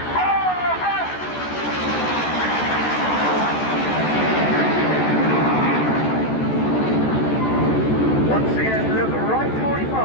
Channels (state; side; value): late; right; 14 ms